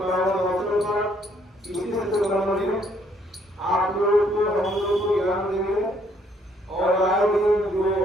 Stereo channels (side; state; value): both; normal; correlation 0.67